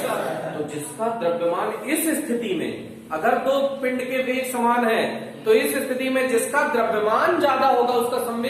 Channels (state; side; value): identical; both; correlation 1.00